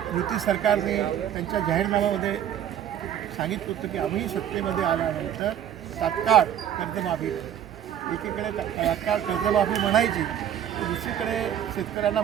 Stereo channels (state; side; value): quieter; left; 10.2 dB